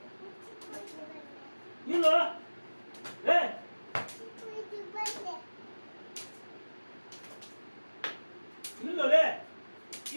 ಇಲ್ಲ ಏ ಇಲ್ಲಲೇ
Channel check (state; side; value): inverted; both; correlation -1.00